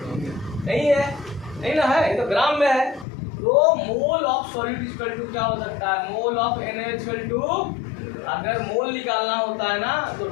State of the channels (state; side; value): drops out; right; at 3.1 s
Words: नहीं है, नहीं ना है, ये तो ग्राम में है। तो mole of solid equal to क्या हो सकता है, mole of NaOH equal to, अगर मोल निकालना होता है ना तो